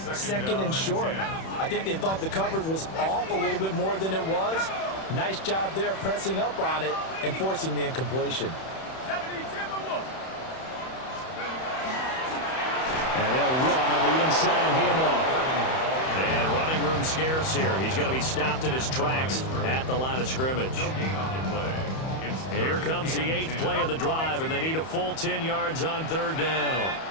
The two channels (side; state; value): right; late; 31 ms